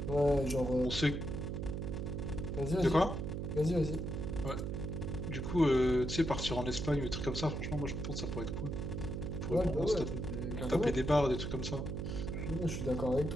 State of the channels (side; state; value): right; noise; hum, 3 dB below the sound